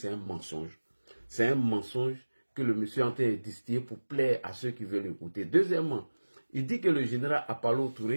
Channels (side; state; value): both; inverted; correlation -1.00